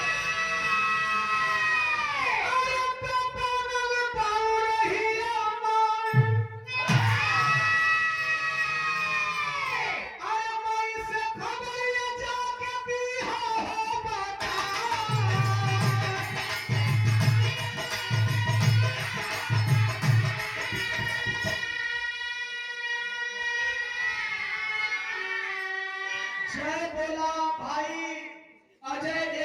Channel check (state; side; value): identical; both; correlation 1.00